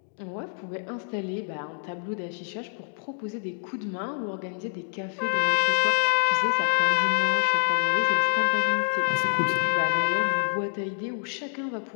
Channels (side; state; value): right; silent; 61 dB below the other